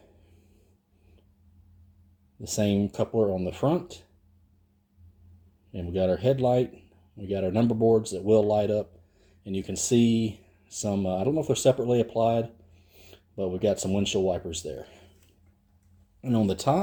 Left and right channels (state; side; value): identical; both; correlation 1.00